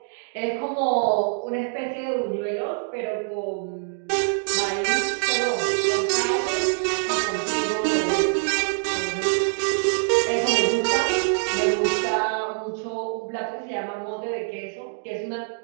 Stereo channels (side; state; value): left; silent; 62 dB below the other